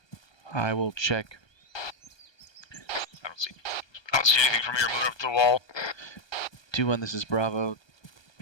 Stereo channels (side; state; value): right; late; 1.2 ms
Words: I will check. I don't see anything from here moving up to the wall. 2-1, this is Bravo.